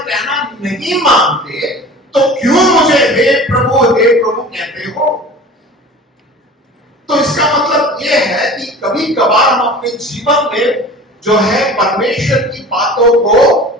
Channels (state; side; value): normal; both; correlation 0.40